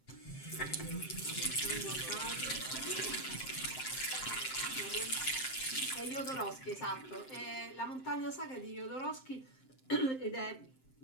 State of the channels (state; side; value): late; right; 7.7 ms